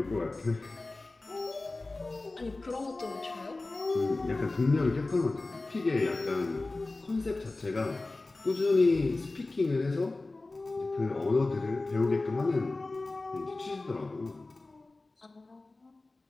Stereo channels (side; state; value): right; quieter; 3.2 dB